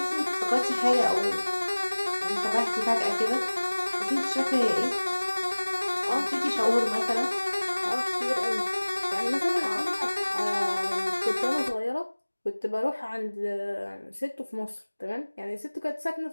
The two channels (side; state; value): both; inverted; correlation -1.00